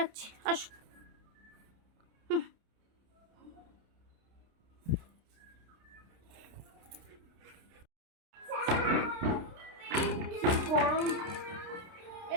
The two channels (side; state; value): left; late; 29 ms